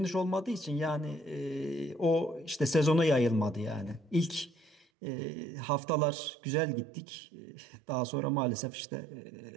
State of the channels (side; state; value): left; drops out; at 4.9 s